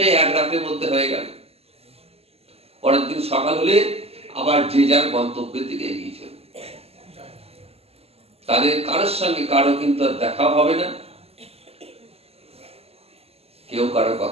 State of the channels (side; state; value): left; late; 0.29 ms